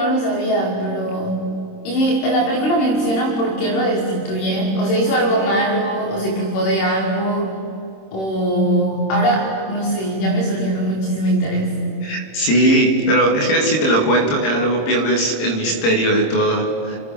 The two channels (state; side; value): late; right; 26 ms